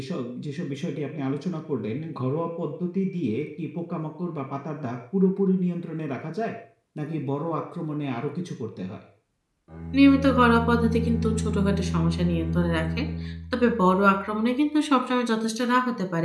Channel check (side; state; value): both; identical; correlation 1.00